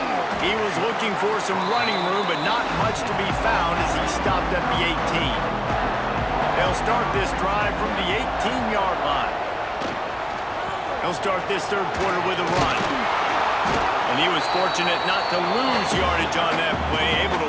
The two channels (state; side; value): identical; both; correlation 1.00